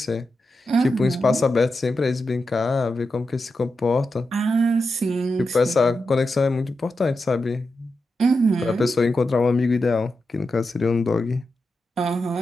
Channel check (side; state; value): both; normal; correlation 0.88